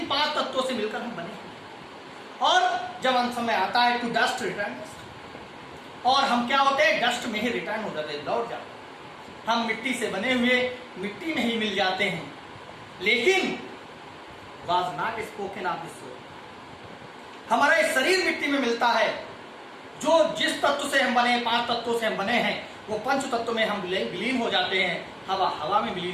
5 तत्वों से मिलकर हम बने हैं। और जब अंत समय आता है टू डस्ट रिटर्न, और हम क्या होते हैं? डस्ट में ही रिटर्न हो जाते हैं, लौट जाते हैं। हम मिट्टी से बने हुए मिट्टी में ही मिल जाते हैं। लेकिन was not spoken of this soul, हमारा ये शरीर मिट्टी में मिलता है। जो जिस तत्व से हम बने, 5 तत्वों से हम बने हैं, वो पंच तत्व में हम विलीन हो जाते हैं। हवा हवा में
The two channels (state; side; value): identical; both; correlation 1.00